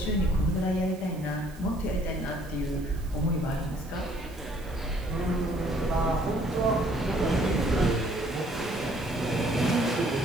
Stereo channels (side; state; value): right; noise; hiss, 23 dB below the sound